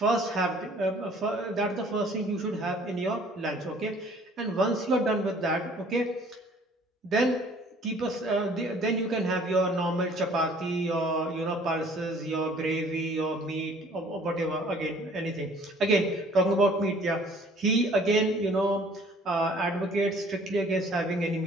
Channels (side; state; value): both; normal; correlation 0.55